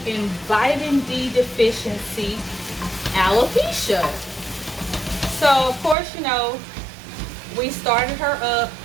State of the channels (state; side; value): drops out; left; at 6.0 s